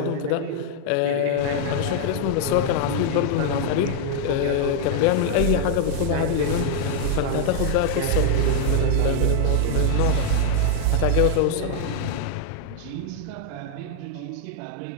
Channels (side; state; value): both; different; correlation 0.00